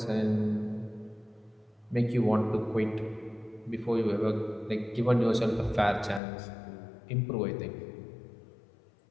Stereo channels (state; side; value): drops out; right; at 6.2 s